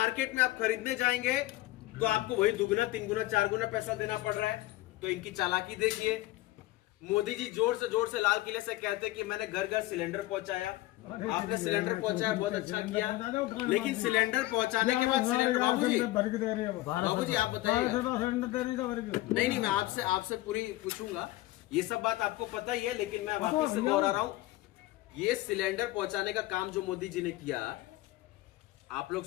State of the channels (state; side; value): quieter; right; 17.8 dB